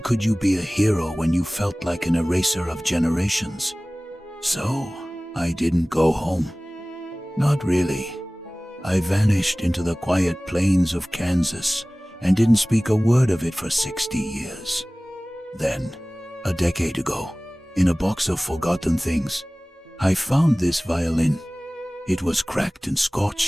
you be a hero when you felt like an eraser of generations? So, I didn't go home. Not really. I vanished into the quiet plains of Kansas and didn't speak a word of it for 60 years. Then, a decade ago, in a box of forgotten things, I found this violin. It was cracked and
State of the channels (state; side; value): normal; both; correlation 0.98